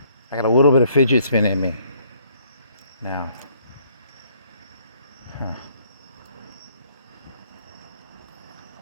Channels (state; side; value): inverted; both; correlation -0.64